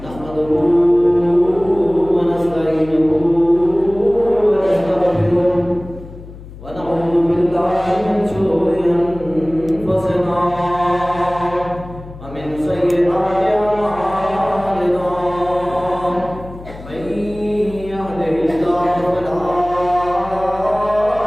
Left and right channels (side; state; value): left; noise; hum, 16 dB below the sound